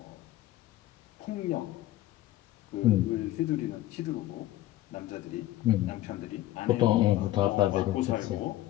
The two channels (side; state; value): right; quieter; 15.3 dB